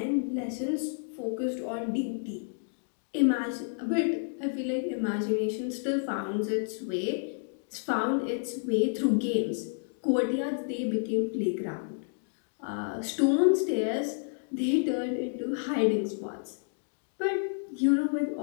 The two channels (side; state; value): right; silent; digital silence